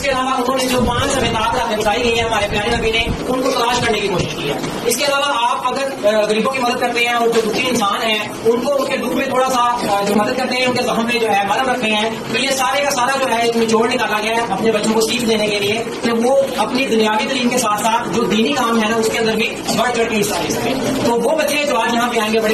अलावा उन्होंने जो 5 अमिताभ रातें बताई गई है हमारे प्यारे नबी ने, उनको तलाश करने की कोशिश की है। इसके अलावा आप अगर गरीबों की मदद करते हैं और जो दुखी इंसान है उनको उनके दुख में थोड़ा सा जो मदद करते हैं, उनके जख्म में जो है मरहम रखते हैं, तो ये सारे का सारा जो है एक निचोड़ निकाला गया है अपने बच्चों को सीख देने के लिए कि वो अपनी दुनियावी तालीम के साथ साथ जो दीनी काम है ना उसके अंदर भी बढ़ चढ़ के हिस्सा ले सकें। तो वो बच्चे जो आज यहाँ पे आएंगे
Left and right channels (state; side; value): identical; both; correlation 1.00